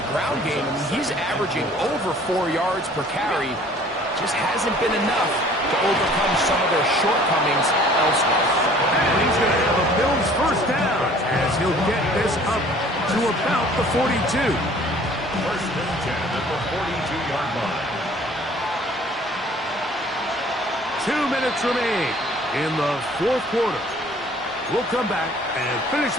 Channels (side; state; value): both; normal; correlation 0.53